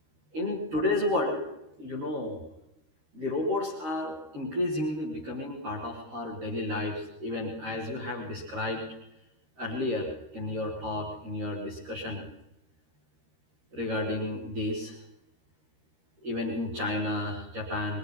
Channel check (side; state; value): left; late; 13 ms